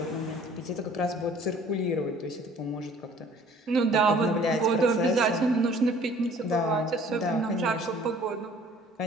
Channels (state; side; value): normal; both; correlation 0.53